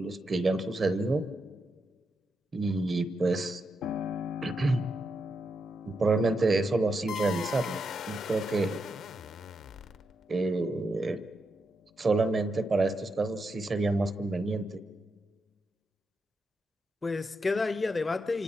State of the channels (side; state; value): both; normal; correlation 0.84